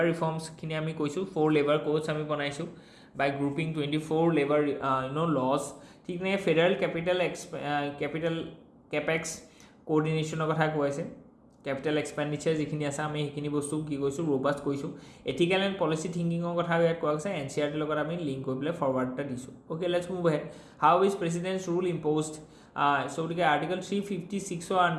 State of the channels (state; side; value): identical; both; correlation 1.00